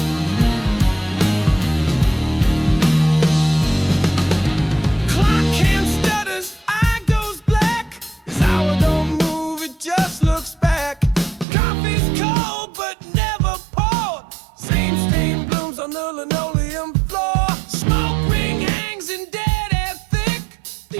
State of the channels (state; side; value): drops out; left; at 11.5 s